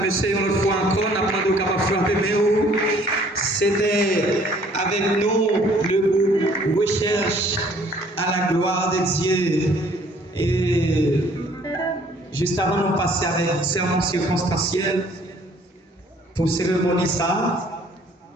une autre fois encore, on a demandé capable de frapper, mais c'était avec nous le groupe Recherche à la gloire de Dieu. Et juste avant de passer avec un sermon circonstanciel pour cérémonie ça,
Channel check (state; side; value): normal; both; correlation 0.58